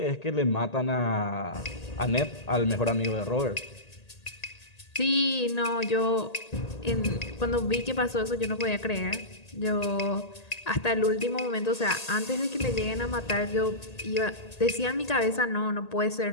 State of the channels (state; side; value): late; right; 1.8 ms